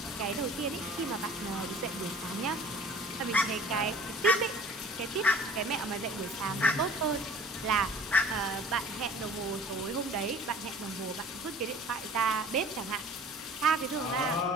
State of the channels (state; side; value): normal; both; correlation 0.46